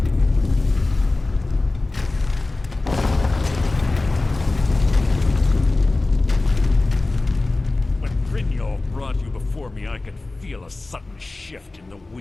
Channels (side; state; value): right; quieter; 3.1 dB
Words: When Brynjolf brought you before me, I could feel a sudden shift in the